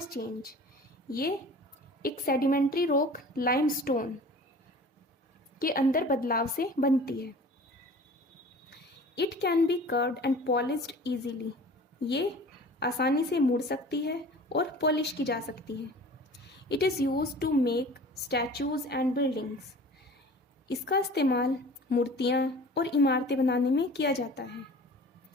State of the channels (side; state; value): both; normal; correlation 0.43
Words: change. ये एक सेडिमेंट्री रॉक लाइमस्टोन के अंदर बदलाव से बनती है. It can be curved and polished easily. ये आसानी से मुड़ सकती है और पॉलिश की जा सकती है. It is use to make statues and buildings. इसका इस्तेमाल मूर्तियाँ और इमारतें बनाने में किया जाता है.